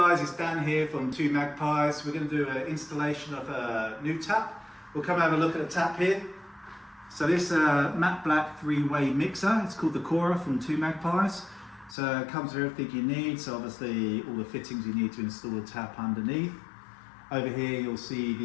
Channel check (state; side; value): drops out; right; at 12.0 s